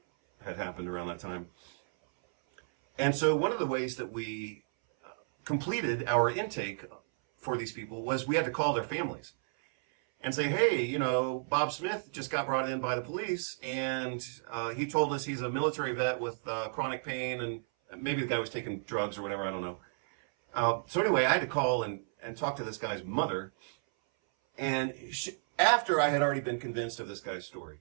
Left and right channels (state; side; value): silent; left; 56 dB below the other